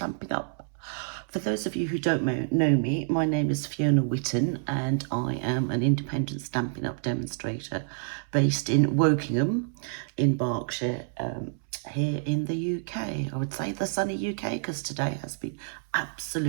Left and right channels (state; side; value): silent; left; 59 dB below the other